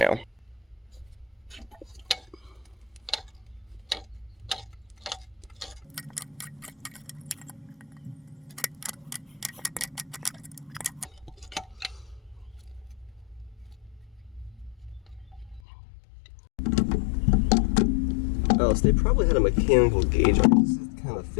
Oh, so they probably had a mechanical gauge on it. This is the kind of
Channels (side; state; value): right; drops out; at 15.6 s